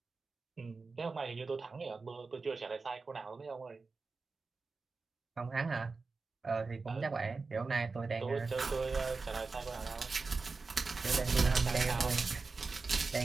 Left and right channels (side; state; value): left; quieter; 4.2 dB